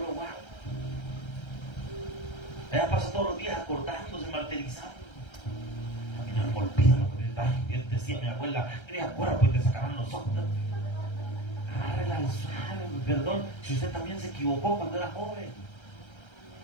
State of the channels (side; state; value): right; late; 1.3 ms